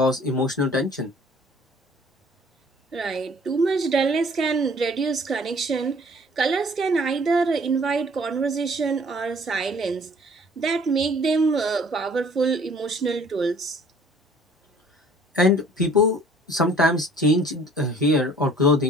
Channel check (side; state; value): both; normal; correlation 0.54